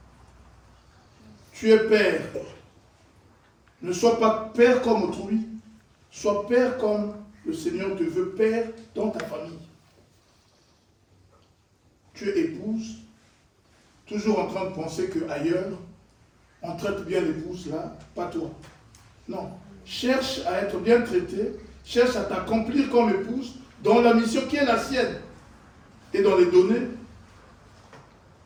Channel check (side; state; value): both; identical; correlation 1.00